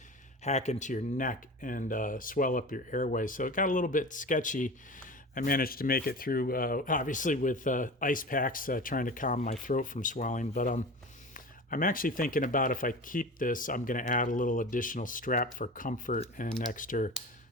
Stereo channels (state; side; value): normal; both; correlation 0.33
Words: hack into your neck and swell up your airway. So it got a little bit sketchy. I managed to make it through, obviously with ice packs, trying to calm my throat from swelling. But I'm actually thinking about, if I keep this, I'm going to add a little additional strap for comfort and extra